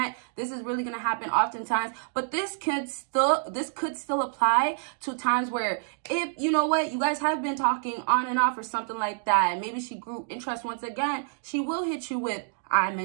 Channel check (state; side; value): silent; left; digital silence